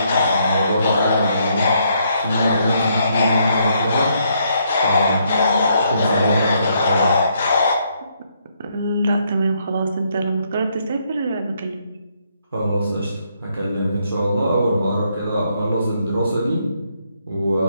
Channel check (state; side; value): inverted; both; correlation -0.73